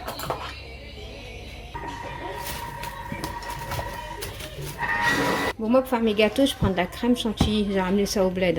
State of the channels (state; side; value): identical; both; correlation 1.00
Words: Bon, moi pour faire mes gâteaux, je prends de la crème chantilly. J'ai ramené ça au bled.